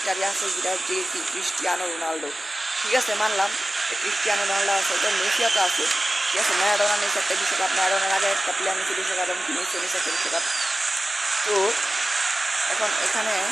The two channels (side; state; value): both; normal; correlation 0.96